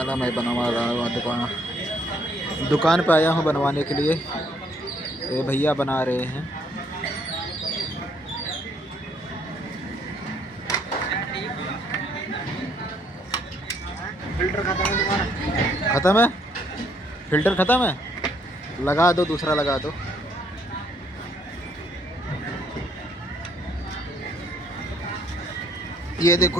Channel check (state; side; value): normal; both; correlation 0.67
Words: मैं बनवा रहा हूँ दुकान पे आया हूँ बनवाने के लिए। ये भैया बना रहे हैं। फिल्टर खत्म है तुम्हारा? ख़त्म है? फिल्टर ख़त्म है? लगा दो, दूसरा लगा दो। ये